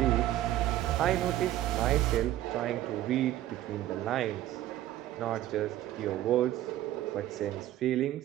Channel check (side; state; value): left; quieter; 13.8 dB